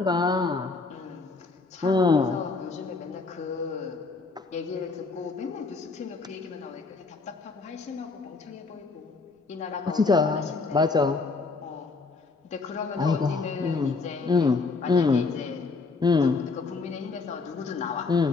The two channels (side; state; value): right; quieter; 4.1 dB